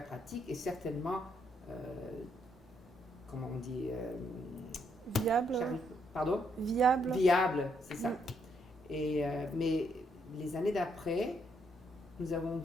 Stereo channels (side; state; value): both; normal; correlation 0.74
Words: et certainement, comment on dit, viable. Pardon? Viable, c'est ça. Mais les années d'après, nous avons